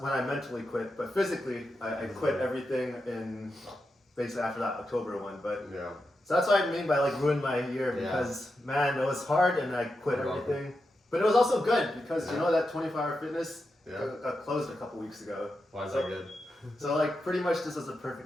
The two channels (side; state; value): both; normal; correlation 0.88